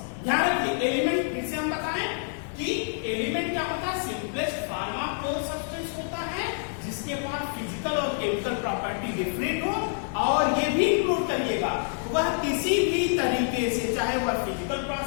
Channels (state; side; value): silent; right; 60 dB below the other